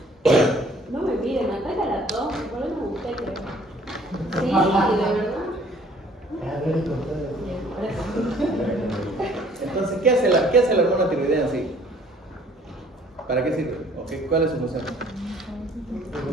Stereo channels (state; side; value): normal; both; correlation 0.57